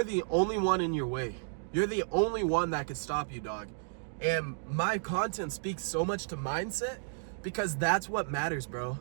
the only one in your way. You're the only one that could stop you, dog. And my content speaks so much to mindset because that's what matters, bro.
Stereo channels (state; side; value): silent; left; digital silence